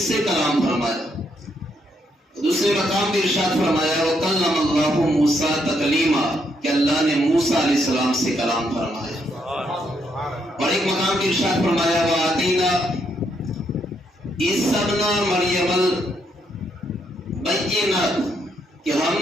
سے کلام فرمایا؟ دوسرے مقام پہ ارشاد فرمایا وَكَلَّمَ اللَّهُ مُوسَىٰ تَكْلِيمًا، کہ اللہ نے موسیٰ علیہ السلام سے کلام فرمایا. اور ایک مقام پہ ارشاد فرمایا وَآتَيْنَا عِیسَىٰ ابْنَ مَرْیَمَ الْبَیِّنَاتِ، کہ ہم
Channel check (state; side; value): normal; both; correlation 0.76